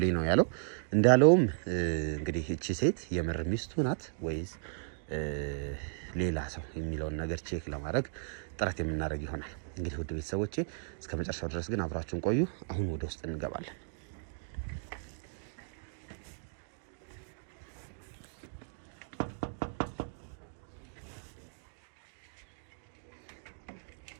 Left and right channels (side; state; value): left; silent; digital silence